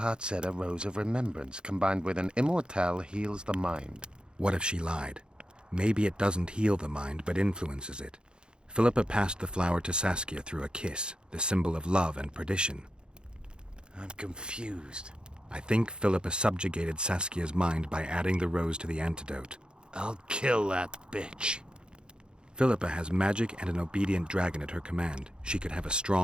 said a rose of remembrance combined with an immortal heals the mind. What if she lied? Maybe it doesn't heal the mind, but influences it. Philippa passed the flower to Saskia through a kiss, the symbol of love and perdition. I'm confused. I think Philippa subjugated Saskia's mind by adding the rose to the antidote. I'll kill that bitch. Philippa has magic and an obedient dragon at her command. She could have a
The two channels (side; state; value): left; late; 0.050 ms